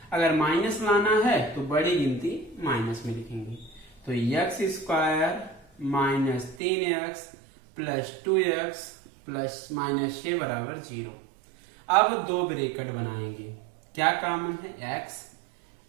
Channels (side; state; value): left; drops out; at 6.6 s